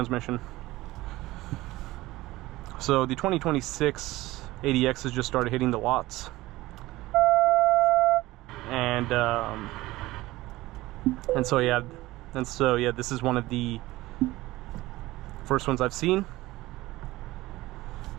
So the 2026 ADX has just started hitting the lots. And so yeah, this is one of the first ones I've seen,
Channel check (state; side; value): quieter; left; 18.3 dB